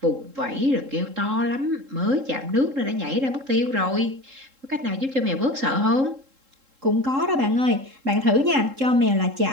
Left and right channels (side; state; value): left; late; 3.7 ms